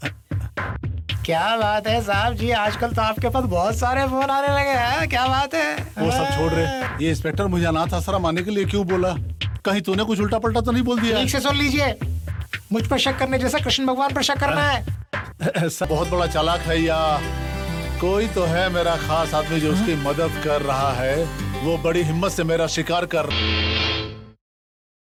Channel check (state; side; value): identical; both; correlation 1.00